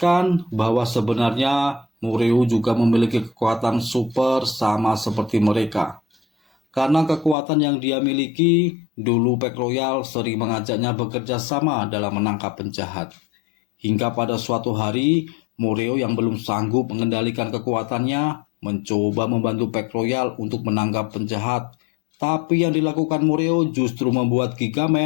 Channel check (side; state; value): right; drops out; at 7.4 s